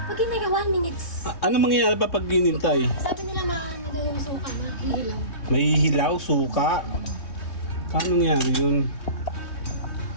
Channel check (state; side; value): late; right; 3.2 ms